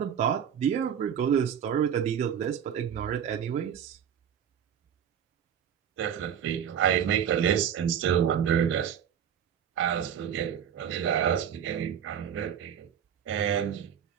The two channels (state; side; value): quieter; left; 8.7 dB